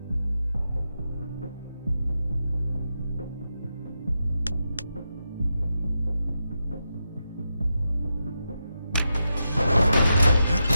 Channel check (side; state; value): both; inverted; correlation -0.87